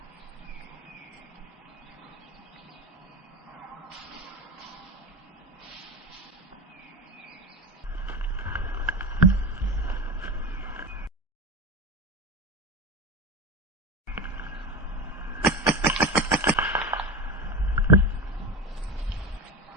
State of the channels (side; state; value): both; normal; correlation 0.23